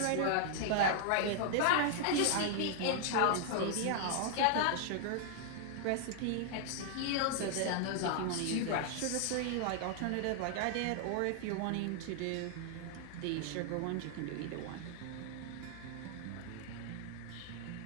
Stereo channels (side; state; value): both; different; correlation 0.00